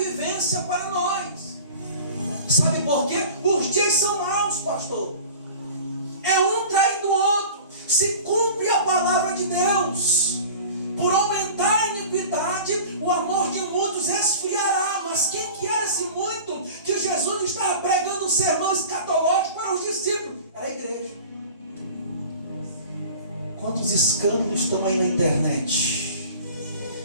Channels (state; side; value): inverted; both; correlation -0.40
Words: para nós. Sabe por quê? Os dias são maus, pastor. É um traindo o outro. Se cumpre a palavra de Deus. Por aumentar a iniquidade, o amor de muitos esfriará. Mas quem que era esse muito que Jesus estava pregando o sermão escatológico para os discípulos? Era a igreja. Quantos escândalos estão aí na internet?